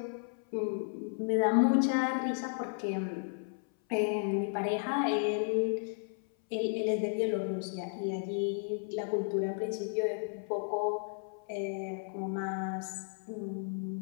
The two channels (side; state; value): right; silent; 55 dB below the other